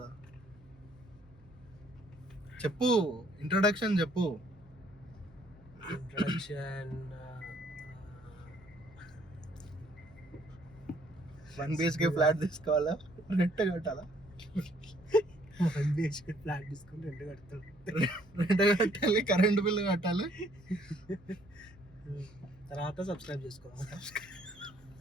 చెప్పు, ఇంట్రొడక్షన్ చెప్పు. ఇంట్రొడక్షన్ 1 BHK ఫ్లాట్ తీసుకోవాలా, రెంట్ కట్టాలా? 1 BHK ఫ్లాట్ తీసుకుని రెంట్ కట్టాలి, కరెంట్ బిల్ కట్టాలి, తర్వాత సబ్స్క్రైబ్ చేసుకోవాలి.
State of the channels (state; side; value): noise; right; hum, 26 dB below the sound